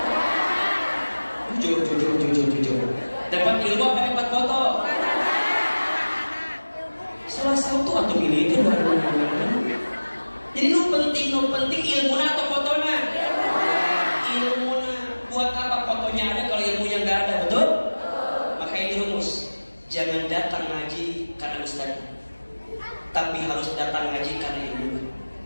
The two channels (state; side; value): inverted; both; correlation -1.00